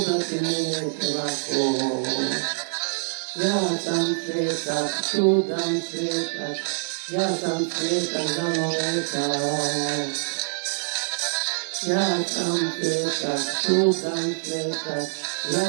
me neće lako. Ja sam svetak, čudan svetak, ja sam svetak za noveta. Ja sam svetak, čudan svetak,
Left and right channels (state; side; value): silent; left; 59 dB below the other